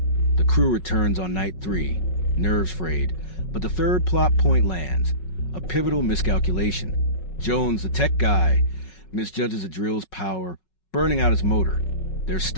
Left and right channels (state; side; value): late; right; 5.4 ms